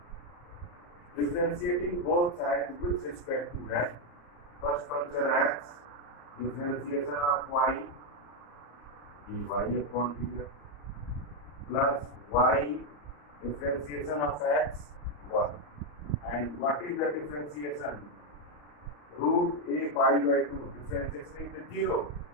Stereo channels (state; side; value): late; right; 34 ms